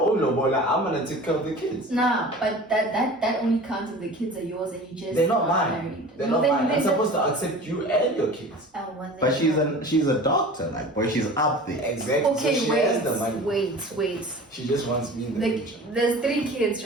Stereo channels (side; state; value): both; normal; correlation 0.39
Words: Lobola, I'm gonna take care of the kids. Nah, but that only counts if the kids are yours and you just They're not mine. married. They're No, not then mine. I'm they're supposed to accept you and your kids. Oh, well, But then- she's a doctor, like, boy, she's up there. Exactly. Okay, so she has the money. wait. She just wants me in the picture. There's 3 kids,